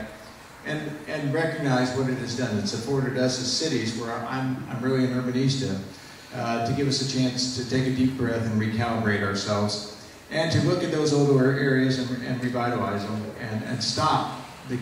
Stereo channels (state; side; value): identical; both; correlation 1.00